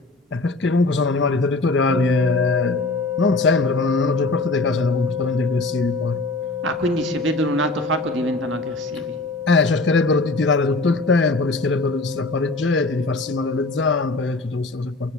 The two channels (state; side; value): quieter; right; 3.2 dB